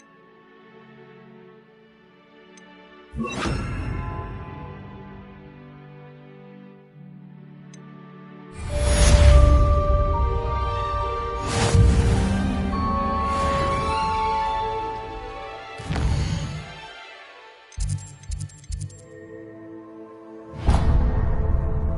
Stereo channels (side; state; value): both; identical; correlation 1.00